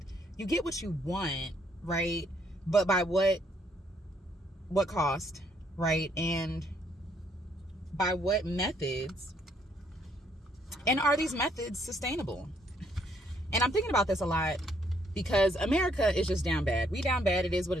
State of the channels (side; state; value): both; normal; correlation 0.69